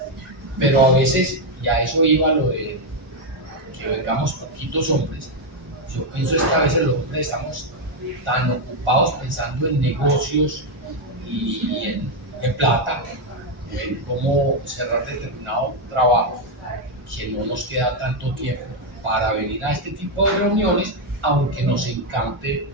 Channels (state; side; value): normal; both; correlation 0.03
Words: Pero a veces, y a eso iba lo de que vengamos poquitos hombres, yo pienso es que a veces los hombres estamos tan ocupados pensando en negocios y en plata, en cómo cerrar determinado trabajo, que no nos queda tanto tiempo para venir a este tipo de reuniones, aunque nos encante